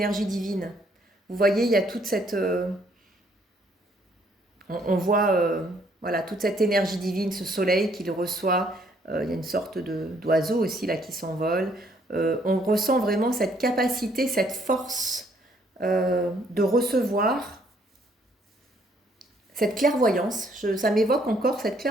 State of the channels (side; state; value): both; normal; correlation 0.67